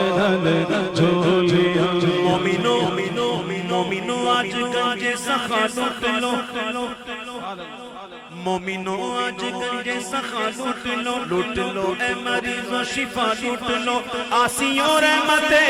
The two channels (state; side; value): identical; both; correlation 1.00